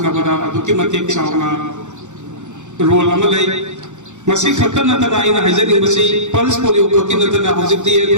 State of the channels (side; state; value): left; late; 0.84 ms